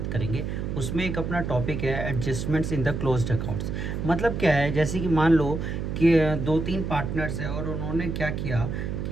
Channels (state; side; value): noise; right; hum, 3 dB below the sound